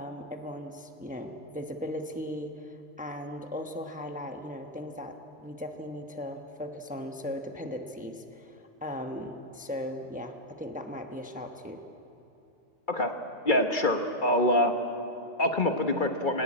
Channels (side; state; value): both; normal; correlation -0.03